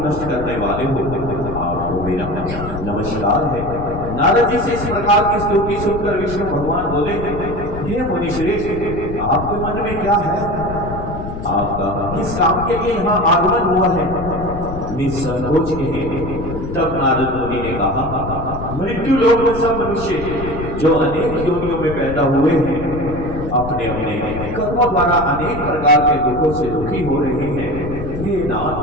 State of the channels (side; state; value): left; noise; rumble, 8 dB below the sound